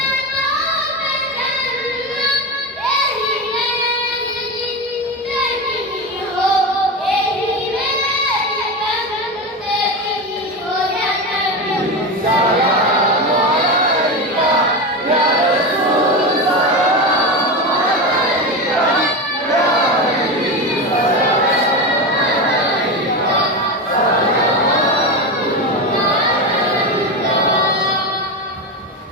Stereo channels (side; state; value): both; normal; correlation 0.19